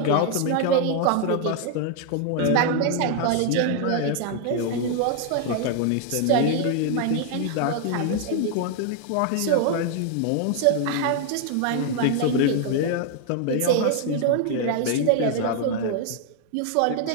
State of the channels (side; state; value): both; different; correlation 0.00